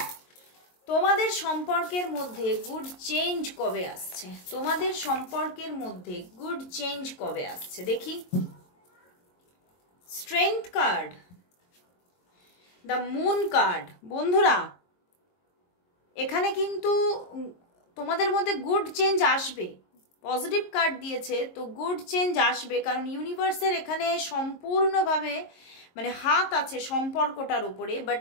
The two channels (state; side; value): late; right; 22 ms